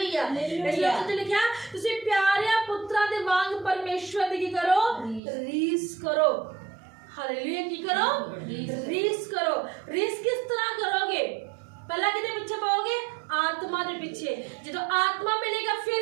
इसलिए तो लिखा तुसी प्यारे पुत्रा दे वांग परमेश्वर दी की करो? रीस करो। हालेलुया। की करो? रीस करो। रीस किस तरह करोगे? पहला किदे पीछे पाओगे? आत्मा दे पीछे। जदों आत्मा मिलेगा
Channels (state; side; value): drops out; left; at 5.2 s